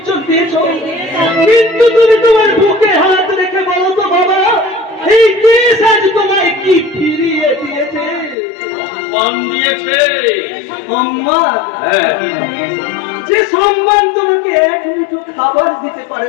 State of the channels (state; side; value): drops out; right; at 8.3 s